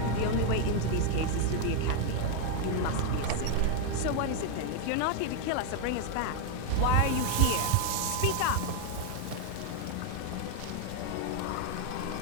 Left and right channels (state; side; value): different; both; correlation 0.01